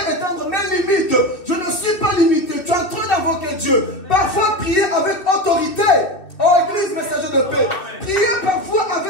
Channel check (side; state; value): right; late; 2.7 ms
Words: mes limites. Je ne suis pas limité. Tu es en train d'invoquer Dieu. Parfois, prier avec autorité. Oh, Église, messager de paix. Prier parfois